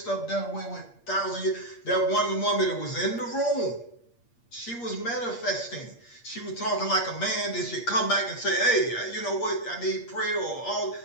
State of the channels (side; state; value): right; late; 8.5 ms